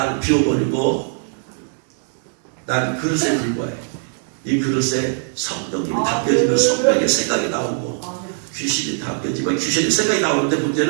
비워버리고 나는 그릇에 불과해. 이 그릇에 성령님이 담겨지면 성령의 생각이 나오고 귀신이 담겨지면 귀신의 생각이 나오는데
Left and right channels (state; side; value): silent; left; digital silence